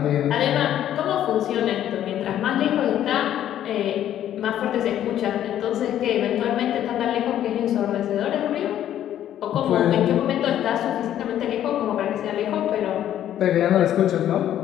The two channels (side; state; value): right; quieter; 11.3 dB